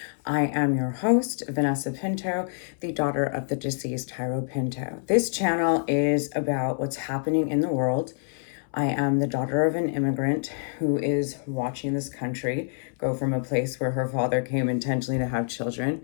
I am your host, Vanessa Pinto, the daughter of the deceased Jairo Pinto. This channel is about what's happening in the world. I am the daughter of an immigrant who is watching this country go from a place where her father came intentionally to have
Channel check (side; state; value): right; silent; 61 dB below the other